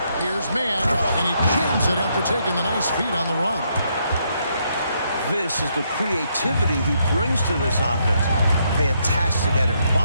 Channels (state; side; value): inverted; both; correlation -0.75